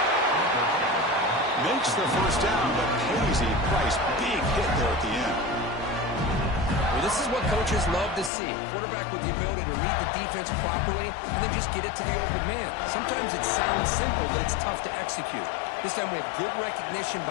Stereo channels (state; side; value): drops out; right; at 8.3 s